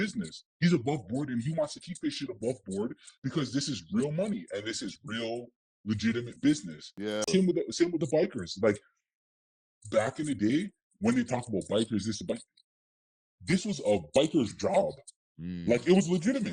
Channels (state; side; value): identical; both; correlation 1.00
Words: He's above board, and he wants to keep his shit above board because this is real money and this is real legitimate business. Yeah. Same with the bikers. Like back in the day when they talk about bikers, this was a biker's job. Like it was